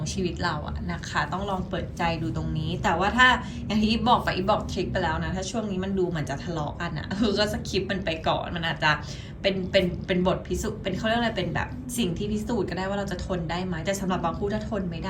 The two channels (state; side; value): identical; both; correlation 1.00